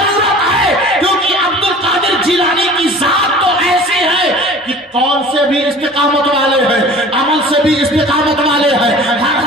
ہے، کیونکہ عبد القادر جیلانی کی ذات تو ایسی ہے کہ قول سے بھی استقامت والے ہیں، عمل سے بھی استقامت والے ہیں،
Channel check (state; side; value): normal; both; correlation 0.44